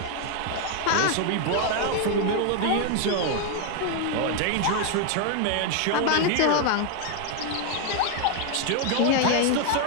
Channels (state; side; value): different; both; correlation 0.00